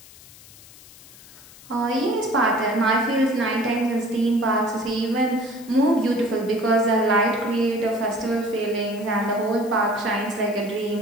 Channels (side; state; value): left; noise; hiss, 21 dB below the sound